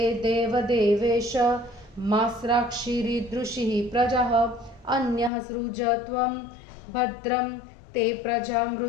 देवदेवेश मास्राक्षिरीदृशिः प्रजः अन्यः सृज त्वं भद्रं ते प्रजा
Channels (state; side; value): drops out; right; at 5.3 s